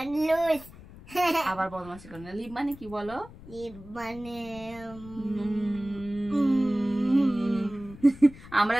লুজ আবার বদমাশি করো না লিপ মানে কি বলো লিপ মানে আমরা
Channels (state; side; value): noise; left; rumble, 18 dB below the sound